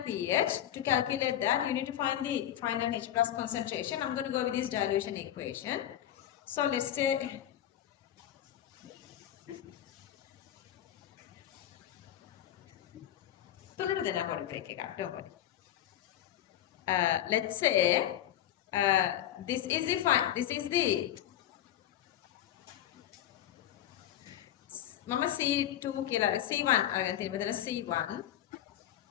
pH, to calculate that, you need to find the final H plus concentration. I'm going to go with this dilution equation. So let's say, let's say this is the Mama C2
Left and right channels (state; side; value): quieter; right; 11.8 dB